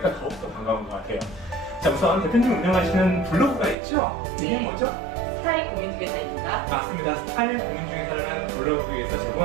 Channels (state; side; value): drops out; left; at 3.8 s